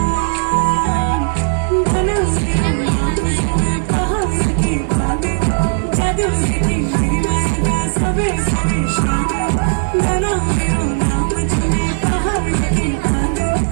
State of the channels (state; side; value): silent; left; digital silence